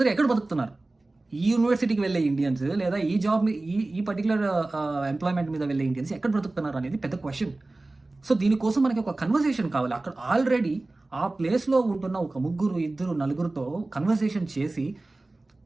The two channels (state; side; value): quieter; left; 3.0 dB